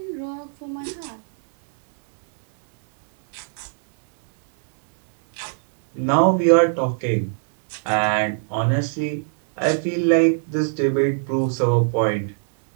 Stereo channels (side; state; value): left; silent; digital silence